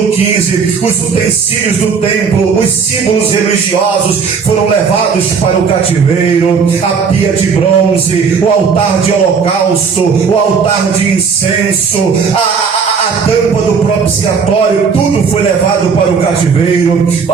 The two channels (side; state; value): left; quieter; 5.8 dB